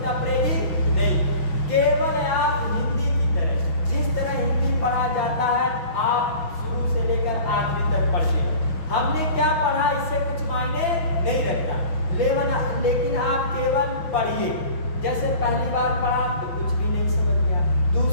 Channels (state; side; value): late; right; 5.9 ms